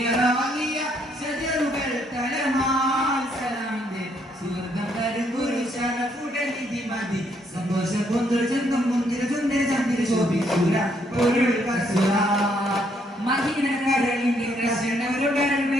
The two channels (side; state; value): both; normal; correlation 0.71